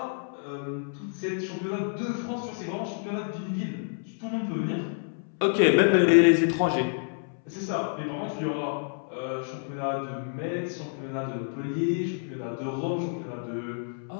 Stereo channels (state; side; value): silent; right; 59 dB below the other